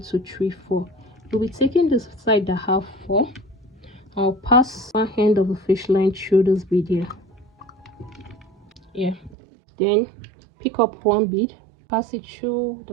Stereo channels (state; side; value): drops out; left; at 9.3 s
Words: 2 3 4. We'll be taking this side that have 4. I'll pass one end of the fish line through this bead here. Then pick up one bead, pass it through